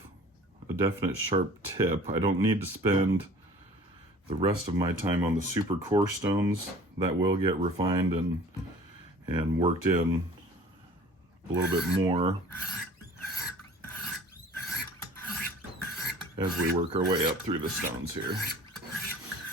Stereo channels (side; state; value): both; normal; correlation 0.47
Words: a definite sharp tip, I don't need to spend the rest of my time on the super coarse stones. That will get refined and worked in a little bit more as we work our way up through the stones here.